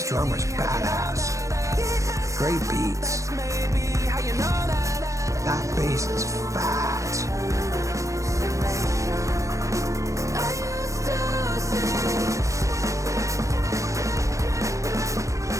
drummer's badass. Great beats. That bass is fat.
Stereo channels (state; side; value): late; left; 0.15 ms